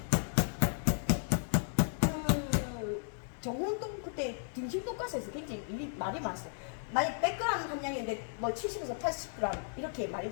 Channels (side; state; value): right; silent; digital silence